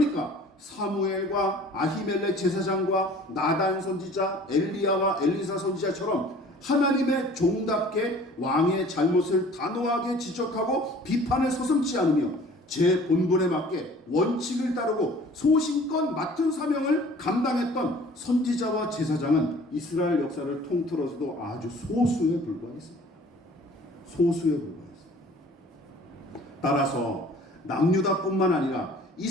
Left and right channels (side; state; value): both; normal; correlation 0.49